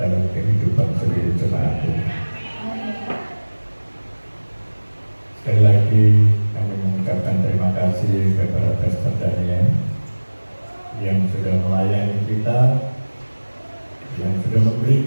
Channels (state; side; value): inverted; both; correlation -1.00